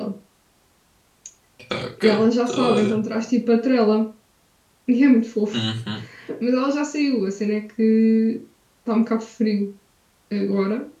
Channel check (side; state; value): both; identical; correlation 1.00